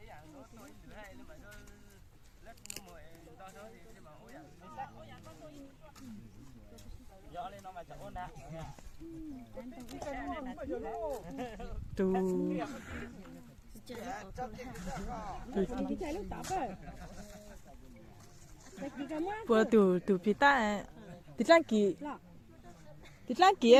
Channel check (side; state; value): both; identical; correlation 1.00